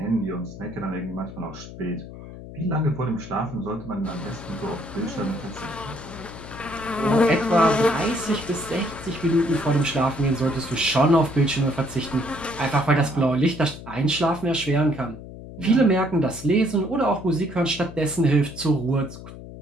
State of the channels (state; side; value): noise; left; hum, 14 dB below the sound